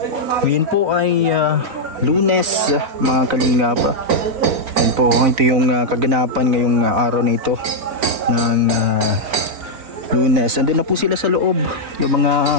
Ngayon po ay Lunes mga kalingap. Yan po, ito yung kaganapan ngayong araw na ito ng Lunes. Nandun na po sila sa loob yung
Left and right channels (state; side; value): late; left; 4.0 ms